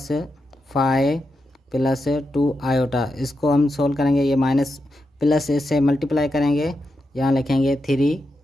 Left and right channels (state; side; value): normal; both; correlation 0.87